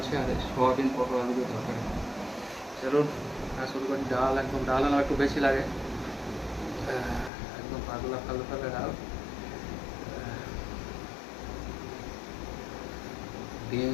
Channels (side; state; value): right; drops out; at 7.3 s